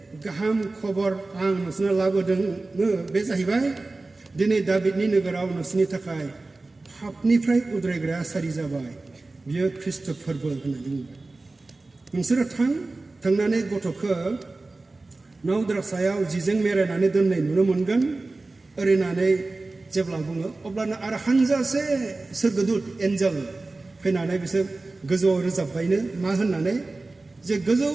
गाहाम खबर आं नोंसोरनो लाबोदों बे जाहैबाय दिनै दाभिदनि नोगोराव नोंसोरनि थाखाय पापनिफ्राय उद्रायग्राया सारि जाबाय बियो ख्रिस्ट फोरबो होननानै बुंबाय नोंसोरो थांनानै गथ'खौ नावद्रा सायाव जिजों मेरायनानै दोननाय नुनो मोनगोन ओरैनानै जेब्ला बुङो अब्लानो आरो हानजासे सोरगोदूत एन्जेल फैनानै बिसोर गोजौआव रोजाबबायनो मा होननानै जे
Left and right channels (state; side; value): quieter; left; 3.3 dB